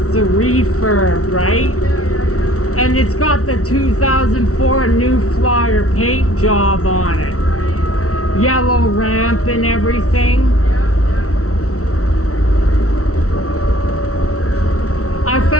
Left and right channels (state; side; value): late; right; 0.64 ms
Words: a refurb, right? Yeah. And it's got the 2004 New Flyer paint job on it. Right. Yellow ramp and everything. Yeah,